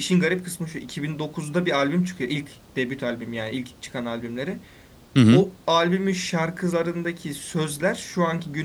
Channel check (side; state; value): both; identical; correlation 1.00